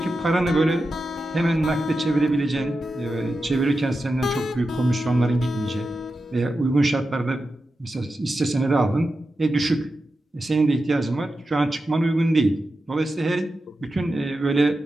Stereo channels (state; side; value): normal; both; correlation 0.91